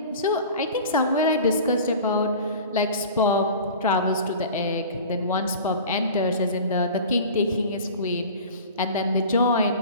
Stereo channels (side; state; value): both; inverted; correlation -0.39